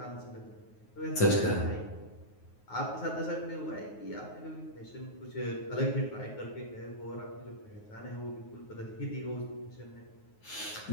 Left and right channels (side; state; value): right; late; 9.4 ms